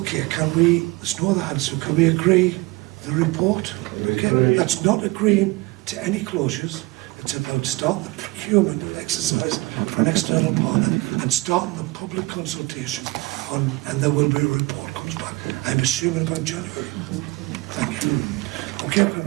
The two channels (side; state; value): left; quieter; 22.1 dB